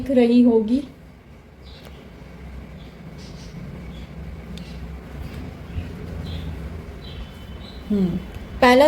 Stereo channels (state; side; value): identical; both; correlation 1.00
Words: रही होगी। पहला